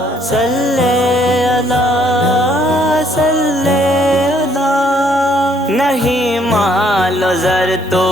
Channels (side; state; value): both; normal; correlation 0.66